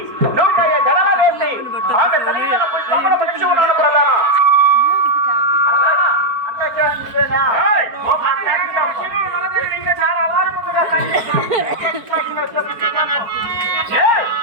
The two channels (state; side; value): late; left; 4.5 ms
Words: నూకయ్య జడల వేసి ఆమె తల్లిదండ్రుల పుష్పములు పిలిచి ఉన్నాను ప్రధాన. చాలా అలారముగా